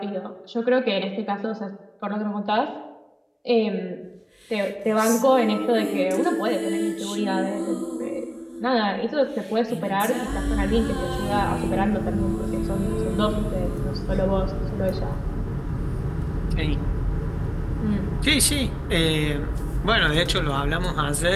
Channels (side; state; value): both; identical; correlation 1.00